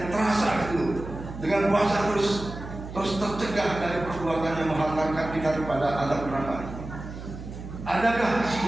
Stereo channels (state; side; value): noise; right; hum, 11 dB below the sound